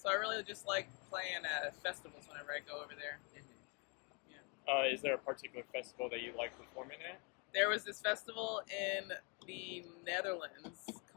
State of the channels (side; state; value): right; quieter; 33.5 dB